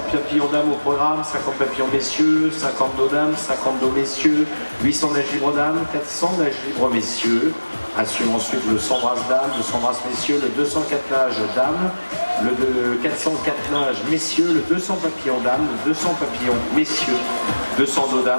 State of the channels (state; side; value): inverted; both; correlation -1.00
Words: papillons dames au programme, 50 papillons messieurs, 50 dos dames, 50 dos messieurs, 800 nages libres dames, 400 nages libres messieurs. Assure ensuite le 100 brasses dames, le 100 brasses messieurs, le 204 nages dames, le 404 nages messieurs, le 200 papillons dames, le 200 papillons messieurs, 200 dos